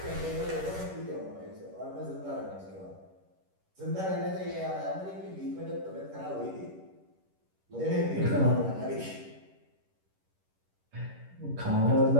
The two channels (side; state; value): left; late; 11 ms